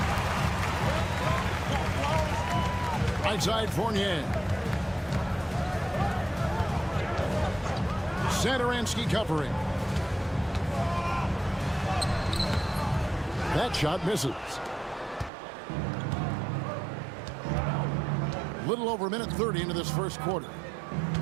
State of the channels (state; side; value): drops out; left; at 15.3 s